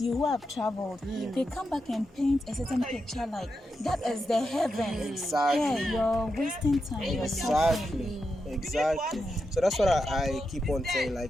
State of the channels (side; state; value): both; normal; correlation 0.86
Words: you who have traveled. They come back and paint a certain picture like that is the heaven. Exactly. Yeah, you're wasting time. You're suffering. Exactly. So that's what I keep on saying.